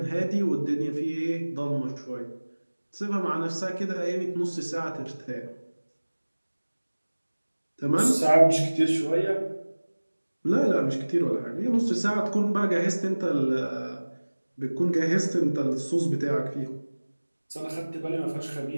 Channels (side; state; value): both; inverted; correlation -1.00